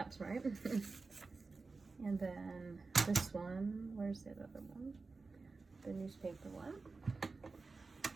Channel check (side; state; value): left; quieter; 4.0 dB